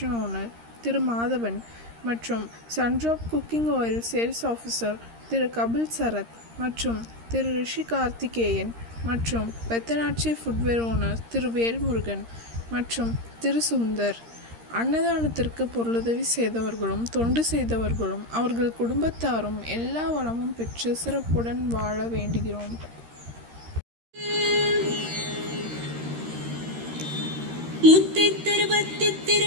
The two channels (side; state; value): left; late; 13 ms